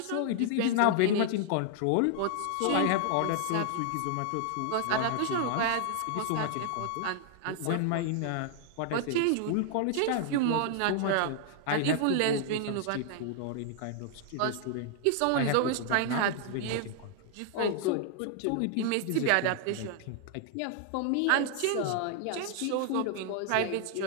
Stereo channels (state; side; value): different; both; correlation 0.00